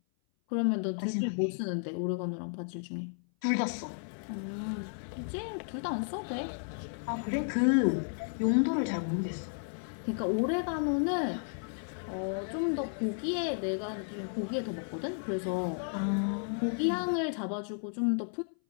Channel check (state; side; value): silent; right; 56 dB below the other